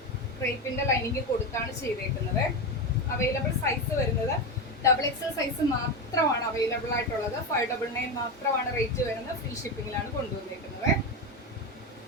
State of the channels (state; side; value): normal; both; correlation 0.16